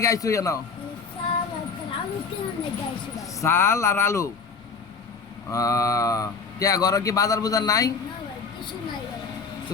আইছো জানো? চাল আর আলু। কে ঘরে কি বাজার বুজার নাই? তো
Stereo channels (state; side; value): quieter; right; 5.1 dB